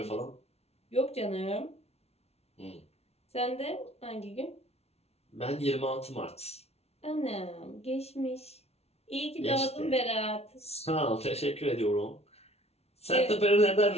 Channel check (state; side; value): late; right; 0.31 ms